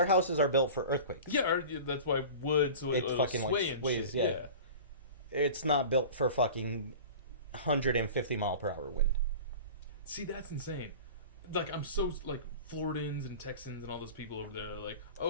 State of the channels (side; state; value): both; inverted; correlation -0.37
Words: houses are built for earthquakes. Yeah, that's why wood, so It fucking, sway like, and sways, shit. yeah. It's not built for fucking 150 mile per hour wind. See, that's insane. Like, I'm so, like, Floridans and Texans and all those people over there are like,